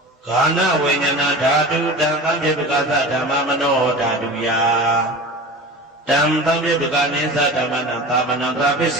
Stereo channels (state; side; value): normal; both; correlation 0.34